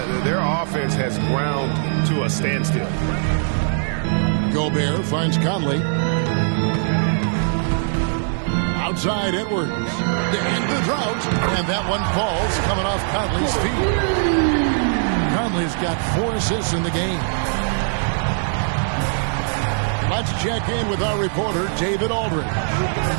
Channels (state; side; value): silent; left; 65 dB below the other